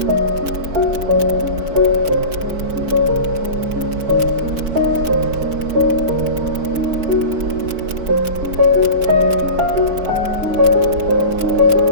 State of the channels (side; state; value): left; late; 4.5 ms